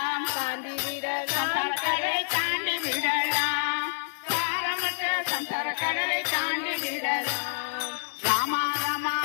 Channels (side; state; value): right; silent; 60 dB below the other